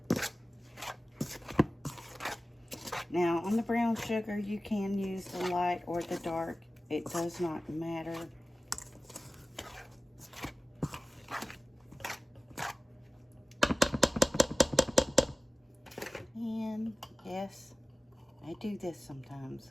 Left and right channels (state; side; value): normal; both; correlation 0.97